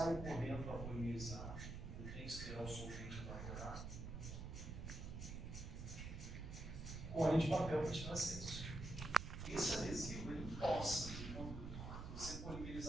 correndo para polimerizar. Eu tenho que esperar o solvente evaporar. Molho de papel para tirar excesso. Esse adesivo, ele possa, quando você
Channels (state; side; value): noise; right; rumble, 6 dB below the sound